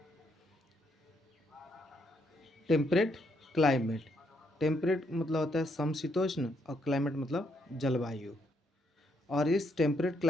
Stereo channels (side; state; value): both; normal; correlation 0.75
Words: टेम्परेट क्लाइमेट, टेम्परेट मतलब होता है समशीतोष्ण और क्लाइमेट मतलब जलवायु। और इस टेम्परेट